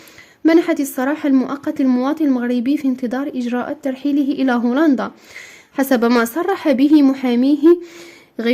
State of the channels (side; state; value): both; identical; correlation 1.00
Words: منحت السراح المؤقت للمواطن المغربي في انتظار إجراءات ترحيله إلى هولندا، حسب ما صرح به محاميه